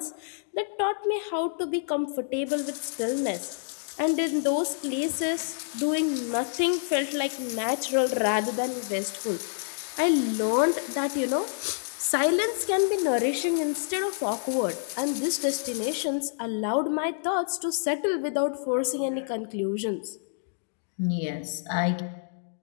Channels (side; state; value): right; silent; digital silence